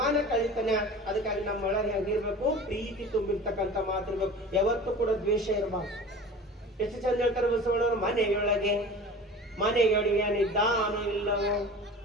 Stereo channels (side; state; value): both; normal; correlation 0.38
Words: ಕಳಿತಾನ. ಅದಕ್ಕಾಗಿ ನಮ್ಮ ಒಳಗೆ ಹೆಂಗಿರ್ಬೇಕು, ಪ್ರೀತಿ ತುಂಬಿರ್ತಕ್ಕಂಥ ಮಾತಿರ್ಬೇಕು. ಯಾವತ್ತೂ ಕೂಡ ದ್ವೇಷ ಇರಬಾರ್ದು. ಎಷ್ಟು ಚಂದ ಹೇಳ್ತಾರೆ ಬಸವಣ್ಣವರು, ಮನೆಯೊಳಗಿದ್ದಾನೋ ಇಲ್ಲವೋ